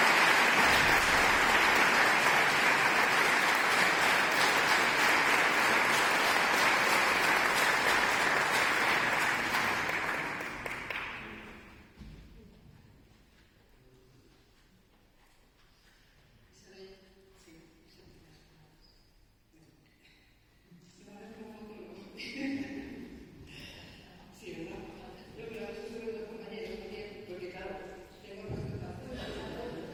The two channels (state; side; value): identical; both; correlation 1.00